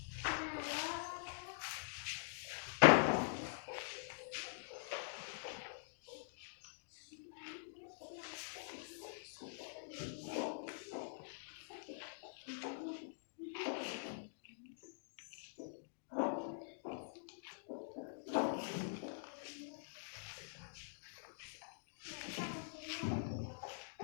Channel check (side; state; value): right; silent; digital silence